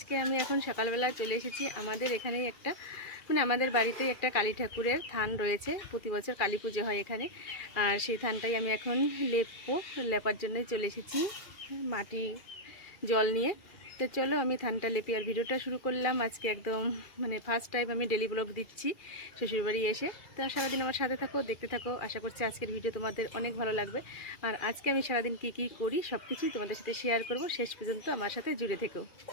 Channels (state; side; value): late; right; 2.4 ms